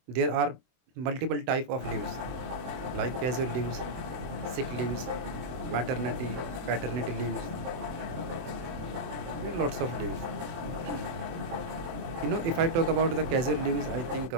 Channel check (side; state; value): left; late; 23 ms